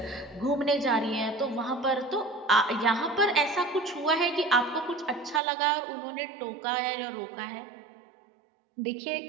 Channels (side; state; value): left; drops out; at 5.4 s